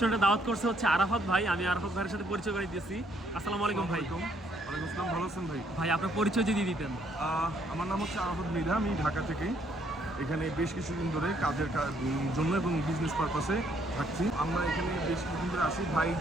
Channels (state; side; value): normal; both; correlation 0.68